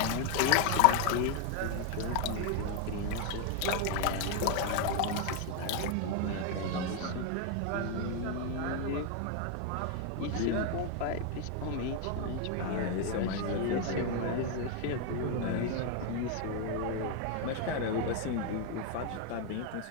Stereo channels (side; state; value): both; different; correlation 0.01